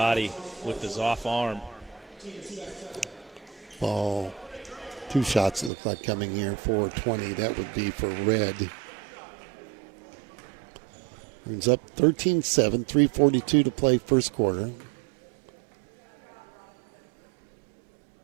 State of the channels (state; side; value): drops out; left; at 5.7 s